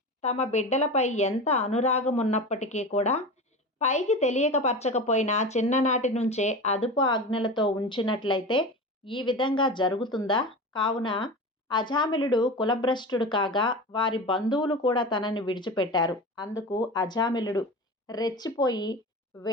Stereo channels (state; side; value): normal; both; correlation 0.28